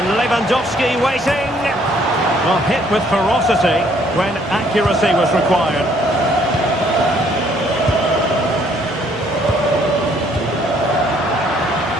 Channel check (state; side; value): normal; both; correlation 0.64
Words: Lewandowski waiting. Well, hit with ferocity when accuracy was required.